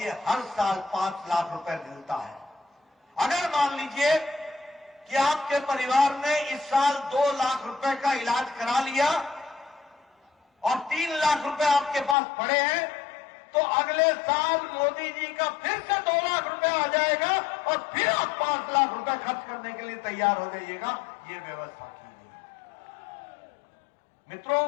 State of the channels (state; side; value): drops out; right; at 12.2 s